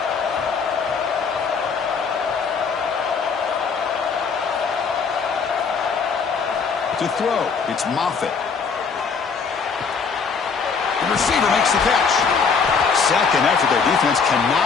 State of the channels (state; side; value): quieter; right; 5.5 dB